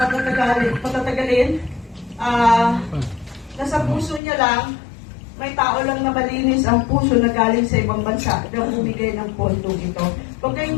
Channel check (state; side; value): drops out; right; at 4.2 s